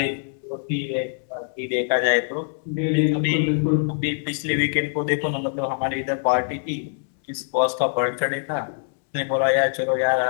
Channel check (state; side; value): silent; right; 63 dB below the other